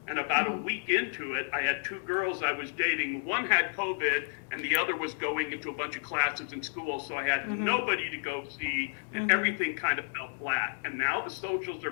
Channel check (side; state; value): right; silent; digital silence